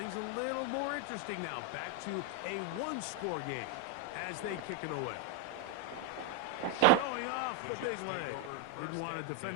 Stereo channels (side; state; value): both; different; correlation 0.01